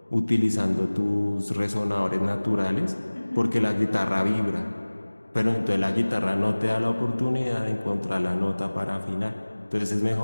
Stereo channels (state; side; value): inverted; both; correlation -1.00